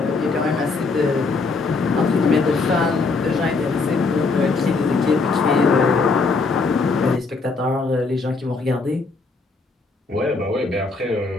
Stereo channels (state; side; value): quieter; right; 4.0 dB